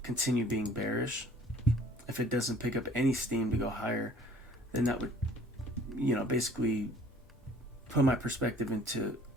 continue being bearish. If it doesn't pick up any steam to go higher, then that would, basically put my perspective into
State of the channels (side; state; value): both; normal; correlation 0.54